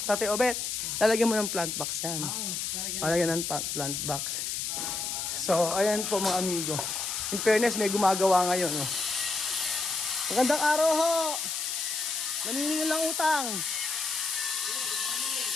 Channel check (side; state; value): left; noise; hiss, 2 dB below the sound